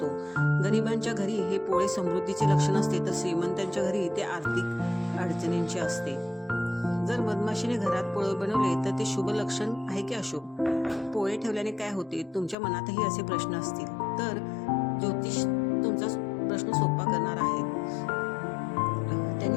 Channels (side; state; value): right; drops out; at 12.6 s